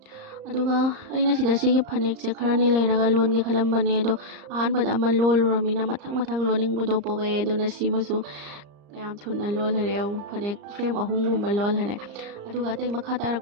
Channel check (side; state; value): left; late; 34 ms